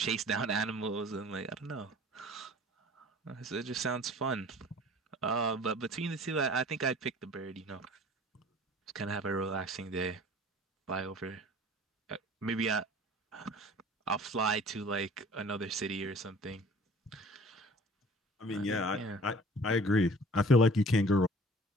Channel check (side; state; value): both; normal; correlation 0.47